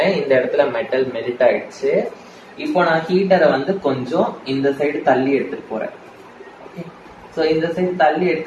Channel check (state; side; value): identical; both; correlation 1.00